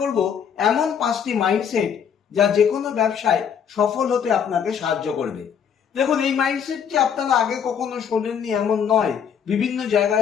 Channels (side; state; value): right; quieter; 7.7 dB